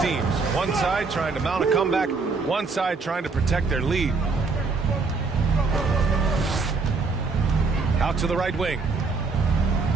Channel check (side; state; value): left; quieter; 4.3 dB